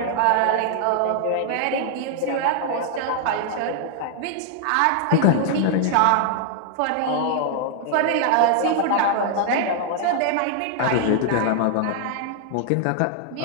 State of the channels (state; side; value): different; both; correlation 0.00